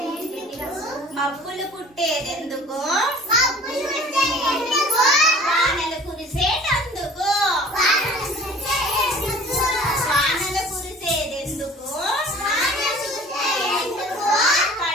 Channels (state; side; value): normal; both; correlation 0.47